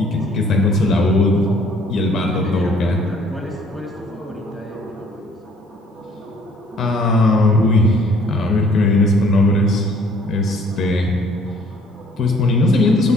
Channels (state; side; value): normal; both; correlation 0.58